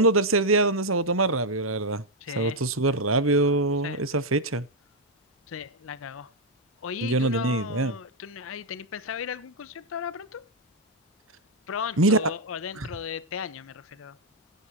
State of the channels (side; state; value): both; normal; correlation 0.00